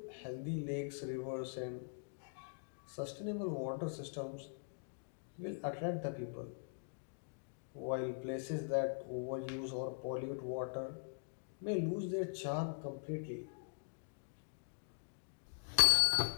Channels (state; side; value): silent; right; digital silence